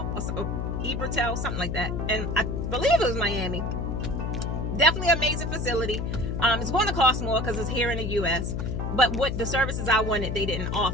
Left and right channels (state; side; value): noise; left; hum, 2 dB below the sound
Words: something like that. And I believe it was Miami. Definitely amazing facility. It's going to cost more because it's here in the U.S. But what the services I wanted, they didn't